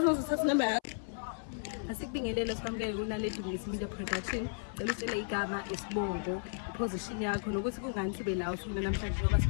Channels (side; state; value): right; silent; 55 dB below the other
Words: what's number? Asikubingelele sikwamukele kuNaledi Media Production. Cela usitshele igama, isibongo, iposition yakho nokuthi kungani sibe la usuna namhlanje ngoba